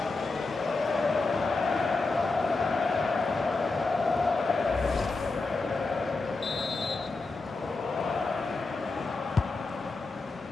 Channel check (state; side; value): quieter; right; 3.7 dB